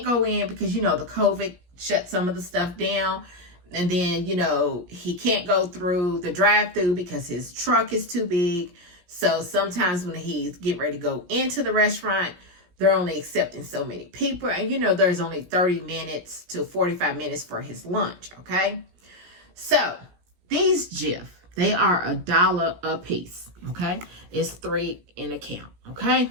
go in because, you know, the COVID shut some of the stuff down. And then, you know, he can't go through the drive-through because his truck is too big. So sometimes when he's getting ready to go into the restaurant, they're only accepting so many people. And, you know, there's only 30 minutes to 45 minutes for his lunch, okay? So, these GIF, They are $1 a piece, okay? It's 3 in a count, okay?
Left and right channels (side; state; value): left; late; 17 ms